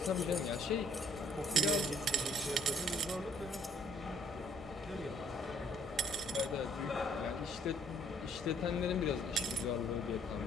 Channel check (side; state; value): both; normal; correlation 0.64